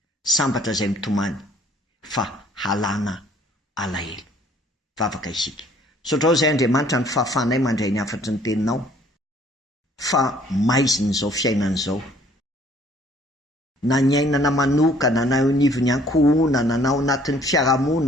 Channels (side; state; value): both; normal; correlation 0.58